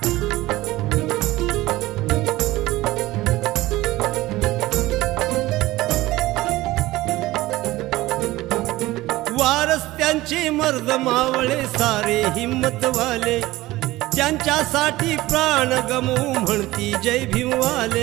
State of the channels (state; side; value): quieter; left; 18.0 dB